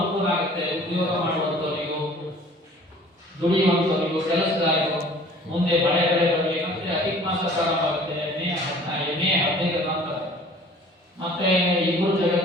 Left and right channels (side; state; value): both; normal; correlation 0.50